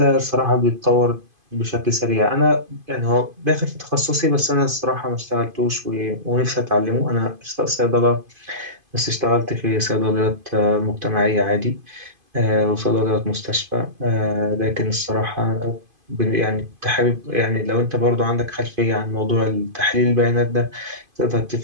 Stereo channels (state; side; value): late; left; 2.5 ms